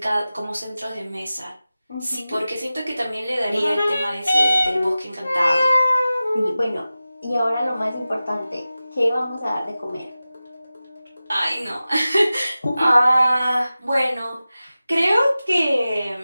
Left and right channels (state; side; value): inverted; both; correlation -0.96